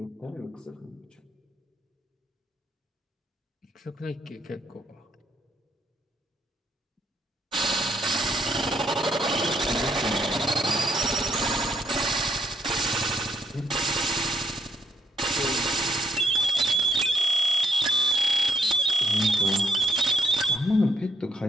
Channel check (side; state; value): both; normal; correlation 0.73